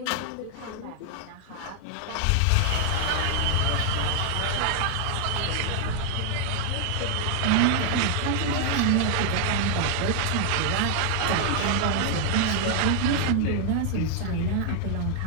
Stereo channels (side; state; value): both; different; correlation 0.00